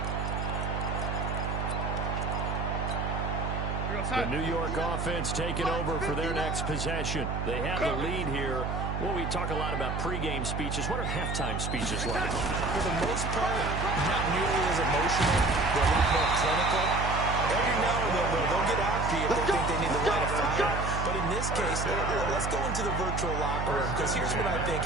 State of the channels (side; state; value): right; noise; hum, 2 dB below the sound